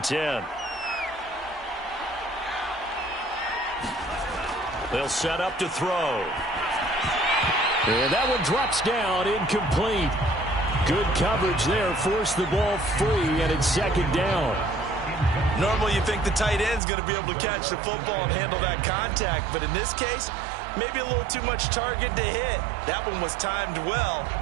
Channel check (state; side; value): drops out; left; at 16.8 s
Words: 10. They'll set up to throw. And that one drops down, incomplete. Good coverage there, forced the ball free, and it's 2nd down. Normally you think the tight end's going to be able to catch the football and handle that contact, but in this case, maybe a little too much target to hit. That one was timed well,